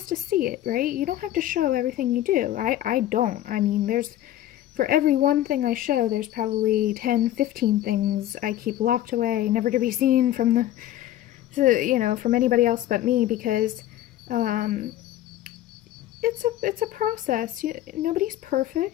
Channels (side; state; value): right; quieter; 13.3 dB